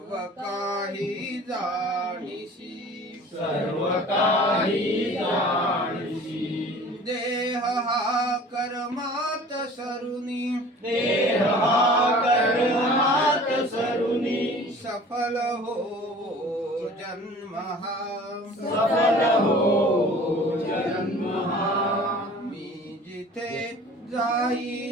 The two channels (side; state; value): both; normal; correlation 0.46